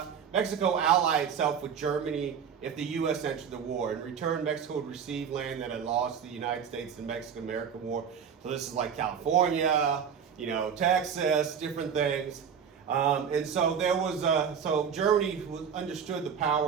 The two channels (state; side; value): quieter; left; 7.4 dB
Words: ally itself with Germany if the U.S. entered the war. In return, Mexico would receive land that had lost the United States in the Mexican-American War. So this is like California, Texas, different things. And so there was so Germany understood the